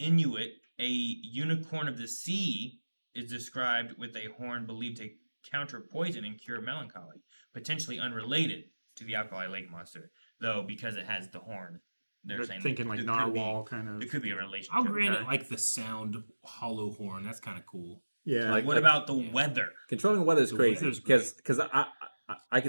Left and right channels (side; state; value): both; inverted; correlation -1.00